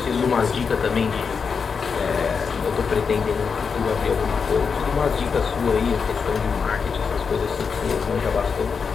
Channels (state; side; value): quieter; right; 5.7 dB